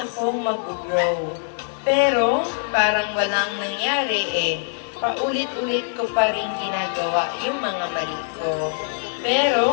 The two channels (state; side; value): silent; right; digital silence